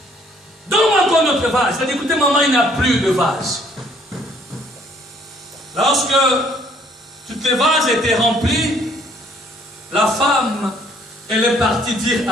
donne-moi encore notre vase. Elle a dit, écoutez maman, il n'y a plus de vase. Lorsque toutes les vases étaient remplis, la femme, elle est partie dire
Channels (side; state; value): both; normal; correlation 0.62